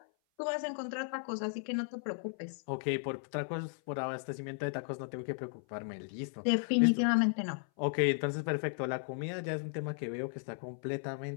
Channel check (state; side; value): silent; right; 54 dB below the other